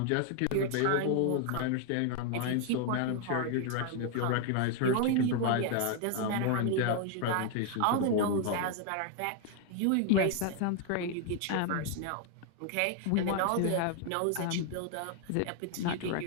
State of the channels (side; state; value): both; different; correlation 0.00